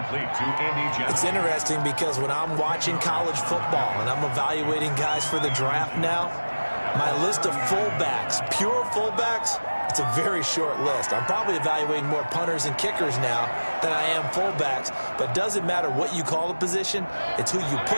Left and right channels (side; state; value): both; inverted; correlation -1.00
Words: to Andy Johnson. It's interesting because when I'm watching college football and I'm evaluating guys for the draft now, my list of fullbacks, pure fullbacks, it's a very short list. I'm probably evaluating more punters and kickers now than I am fullbacks, but it doesn't matter what you call a position, it's who you